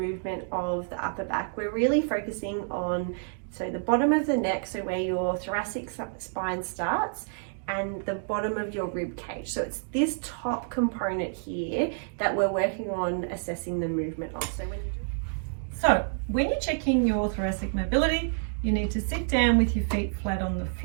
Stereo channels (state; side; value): silent; left; digital silence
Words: of the upper back, we're really focusing on the bottom of the neck, so where your thoracic spine starts, and the bottom of your rib cage. So it's this top component here that we're working on assessing the movement of. So when you're checking your thoracic mobility, you need to sit down with your feet flat on the